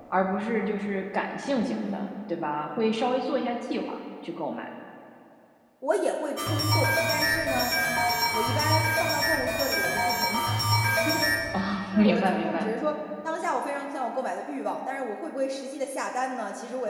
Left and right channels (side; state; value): both; identical; correlation 1.00